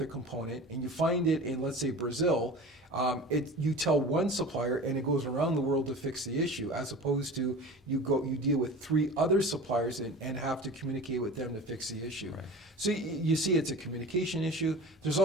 component and you find it in, let's say, Brazil, you tell one supplier and it goes around the world to fix the issue, as opposed to you deal with 3 other suppliers and have to communicate with them to fix the issue. Right. So you see it's a communication issue. There's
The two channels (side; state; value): both; normal; correlation 0.36